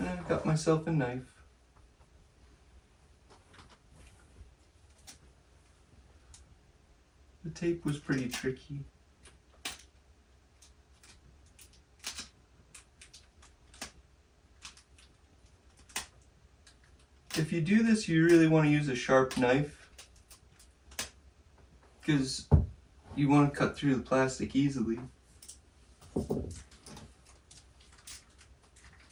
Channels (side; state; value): both; identical; correlation 1.00